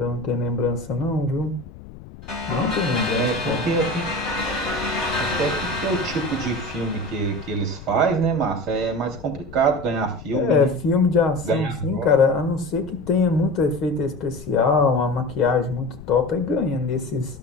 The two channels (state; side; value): noise; left; rumble, 16 dB below the sound